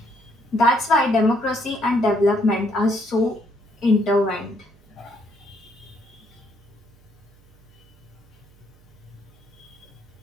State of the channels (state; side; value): noise; right; hum, 28 dB below the sound